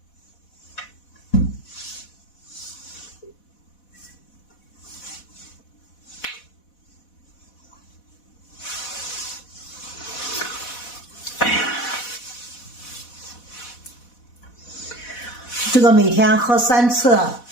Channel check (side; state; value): right; late; 4.1 ms